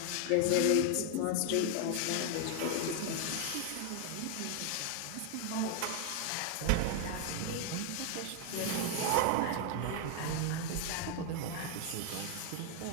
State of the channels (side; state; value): both; different; correlation 0.00